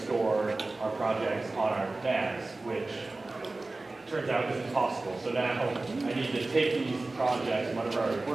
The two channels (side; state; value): left; quieter; 3.2 dB